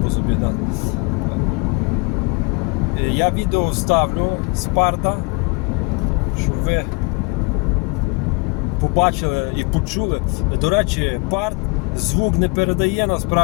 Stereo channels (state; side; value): quieter; right; 30.0 dB